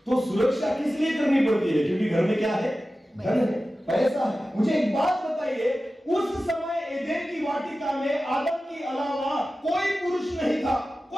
तो सुरक्षा किस लिए करनी पड़ती है? क्योंकि घर में क्या है? धन है, पैसा है। मुझे एक बात बताइए, उस समय एदेन की वाटिका में आदम के अलावा कोई पुरुष नहीं था,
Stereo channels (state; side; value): normal; both; correlation 0.94